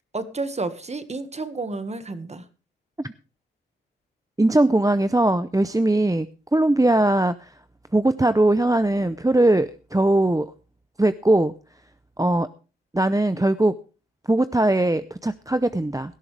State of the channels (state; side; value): normal; both; correlation 0.88